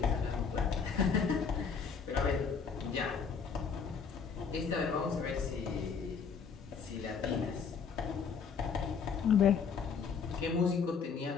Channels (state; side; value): quieter; right; 6.0 dB